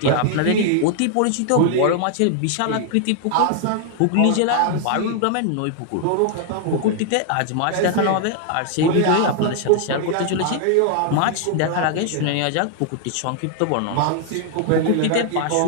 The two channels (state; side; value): different; both; correlation 0.00